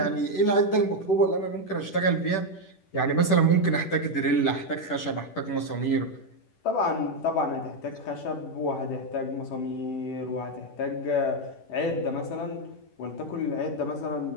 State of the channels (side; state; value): right; late; 10 ms